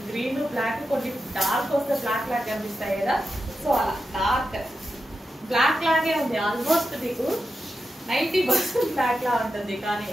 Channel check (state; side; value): normal; both; correlation 0.89